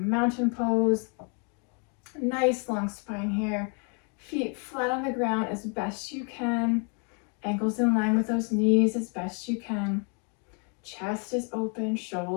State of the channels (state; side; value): quieter; right; 38.3 dB